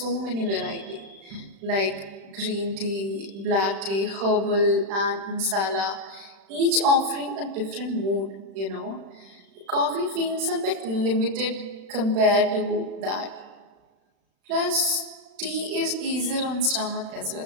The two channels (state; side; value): late; left; 36 ms